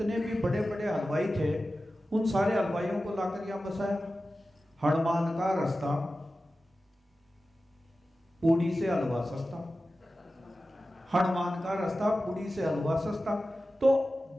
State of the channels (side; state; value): both; normal; correlation 0.94